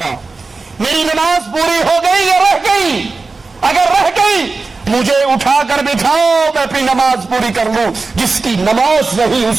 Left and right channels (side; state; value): left; quieter; 3.9 dB